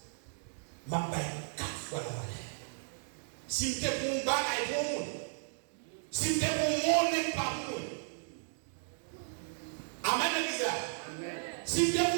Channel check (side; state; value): left; silent; digital silence